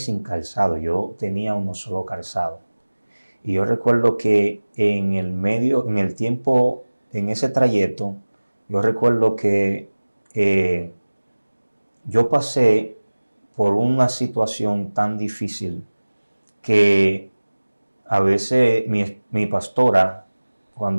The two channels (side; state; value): both; inverted; correlation -1.00